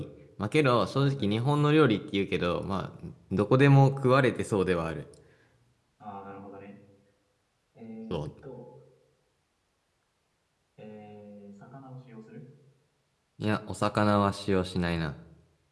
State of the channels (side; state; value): both; identical; correlation 1.00